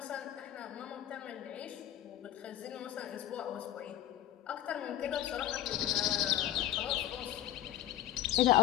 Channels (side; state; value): right; quieter; 13.1 dB